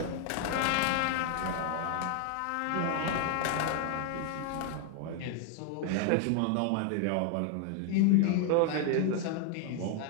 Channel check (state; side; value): different; both; correlation 0.00